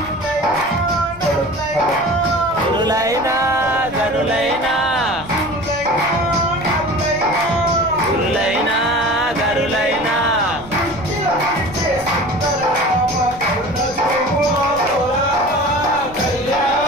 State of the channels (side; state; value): left; noise; rumble, 18 dB below the sound